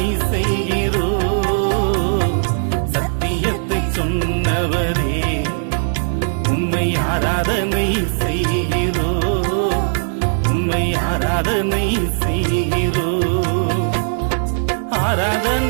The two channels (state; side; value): silent; left; digital silence